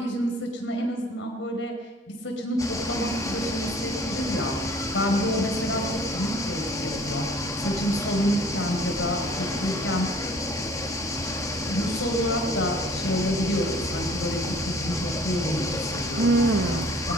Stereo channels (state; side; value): normal; both; correlation 0.52